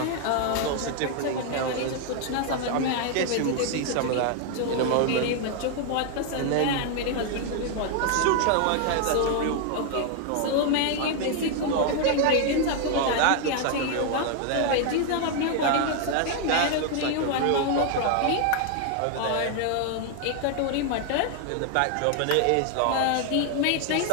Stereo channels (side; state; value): both; different; correlation 0.00